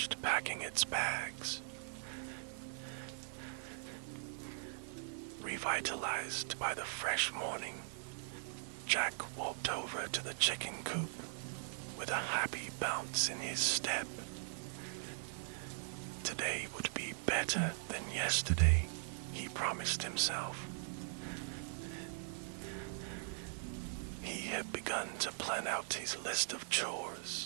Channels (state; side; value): silent; left; 51 dB below the other